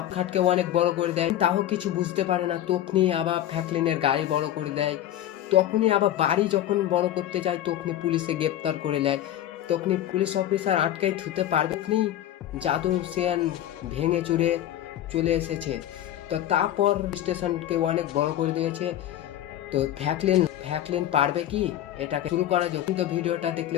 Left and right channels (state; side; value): quieter; right; 12.1 dB